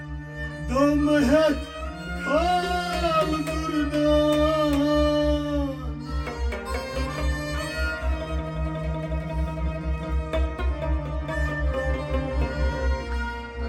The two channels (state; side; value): identical; both; correlation 1.00